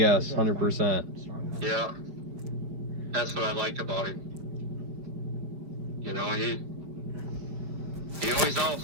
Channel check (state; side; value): late; left; 5.1 ms